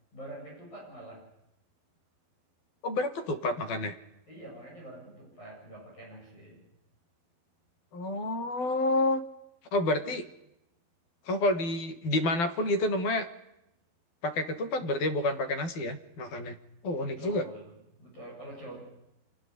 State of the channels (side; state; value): right; late; 12 ms